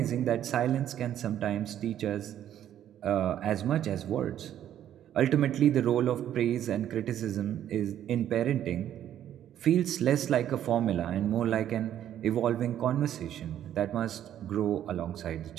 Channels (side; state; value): left; quieter; 11.0 dB